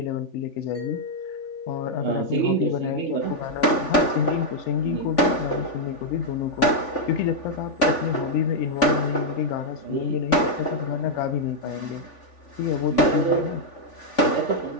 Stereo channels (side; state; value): right; late; 3.5 ms